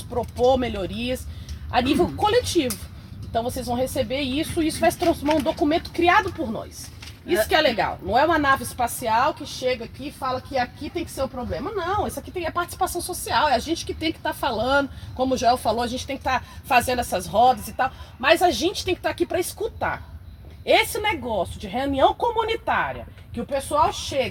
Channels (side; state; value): both; identical; correlation 1.00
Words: propor melhorias a nível coletivo. Então vocês vão receber isso e isso vai se transformar em um documento criado por nós. Isso que é legal. Não é uma nave espacial que chega aqui e fala que aqui tem que ser o problema. Não, isso aqui é participação social. É a gente que tem que estar falando, como o Joel falou, a gente tem que estar fazendo essas rodas e tal. Mas a gente tem que estar aqui para escutar. Esse negócio de reunião comunitária, que o pessoal